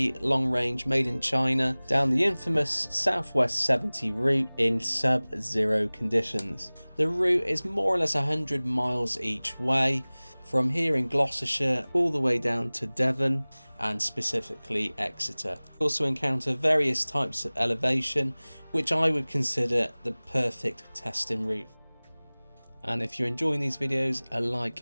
long range made in China down the infamous Southwest 70 route in sub-zero conditions. The route is more or less 100 miles each way from here in Gloucestershire all the way down to Devon and specifically Exeter. You also encounter various types of elevation, which I would consider the perfect testing route. And if you're enjoying these videos, a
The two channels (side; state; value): both; inverted; correlation -1.00